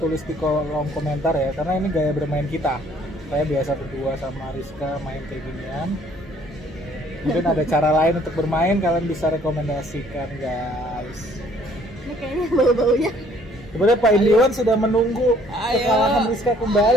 di kolom komentar ya, karena ini gaya bermain kita. Saya biasa berdua sama Rizka main kayak ginian. Mungkin ada cara lain untuk bermain, kalian bisa rekomendasikan guys. Ini kayaknya bau-baunya. Sebenarnya Pak Indiwan sudah menunggu Ayo. kekalahan Rizka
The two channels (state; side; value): normal; both; correlation 0.61